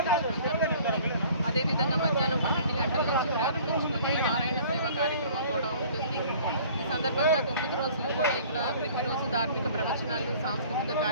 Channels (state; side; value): inverted; both; correlation -0.51